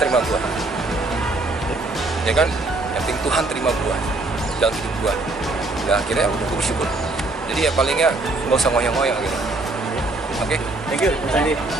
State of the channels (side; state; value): left; quieter; 3.1 dB